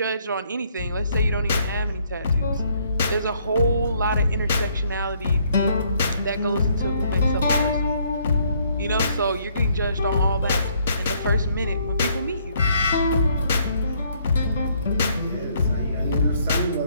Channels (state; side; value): inverted; both; correlation -0.67